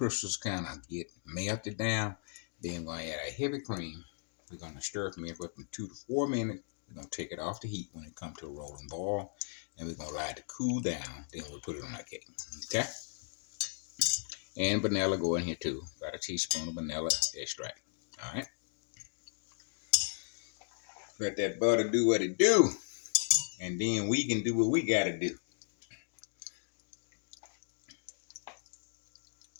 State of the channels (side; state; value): right; silent; digital silence